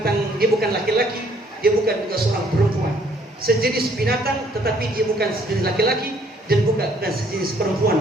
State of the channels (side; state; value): both; normal; correlation 0.63